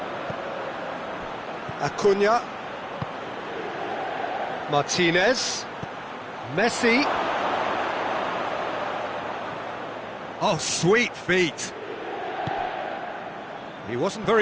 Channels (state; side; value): identical; both; correlation 1.00